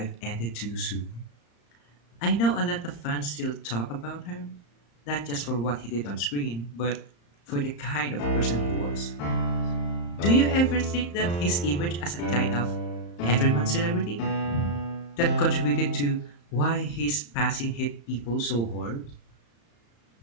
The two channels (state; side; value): late; right; 35 ms